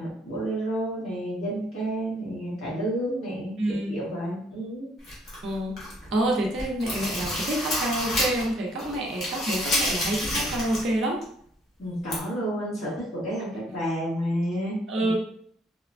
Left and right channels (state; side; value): normal; both; correlation 0.64